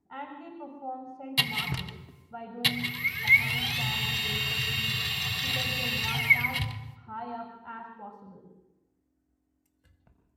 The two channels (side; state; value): both; identical; correlation 1.00